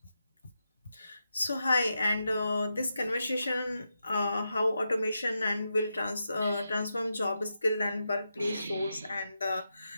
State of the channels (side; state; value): both; inverted; correlation -0.87